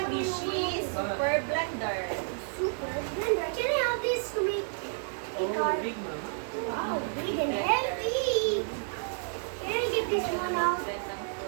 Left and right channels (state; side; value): silent; left; digital silence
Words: Super Blender. Super blender. Can I have this to make a Oh, car? big mama. Wow, big and heavy. Can I get this one out? Blend ng